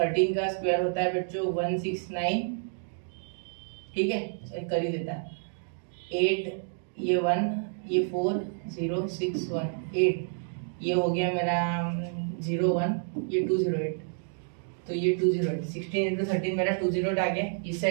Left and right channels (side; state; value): left; silent; digital silence